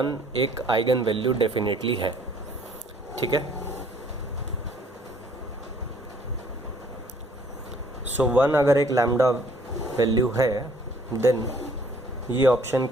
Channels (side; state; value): both; normal; correlation 0.59